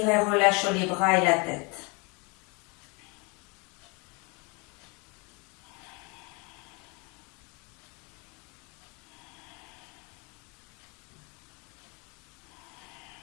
et relâche les bras et la tête.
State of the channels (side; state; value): right; quieter; 30.3 dB